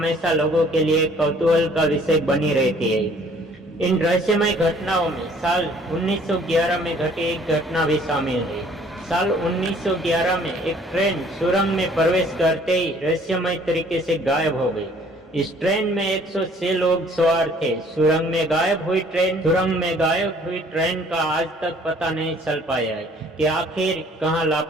लोगों के लिए कौतूहल का विषय बनी रहती है। इन रहस्यमय घटनाओं में साल 1911 में घटी एक घटना भी शामिल है। साल 1911 में एक ट्रेन सुरंग में प्रवेश करते ही रहस्यमय तरीके से गायब हो गई। इस ट्रेन में 106 लोग सवार थे। सुरंग में गायब हुई ट्रेन का आज तक पता नहीं चल पाया है कि आखिर कहां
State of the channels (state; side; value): normal; both; correlation 0.57